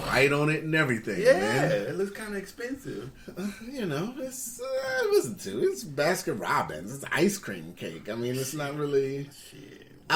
right on it and everything, Yeah, man. it looks kind of expensive. It's listen to it's Baskin Robbins. It's ice cream cake. I mean, it's not really. Shit.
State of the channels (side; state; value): both; identical; correlation 1.00